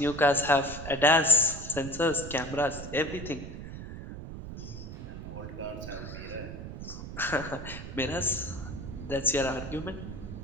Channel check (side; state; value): right; noise; rumble, 9 dB below the sound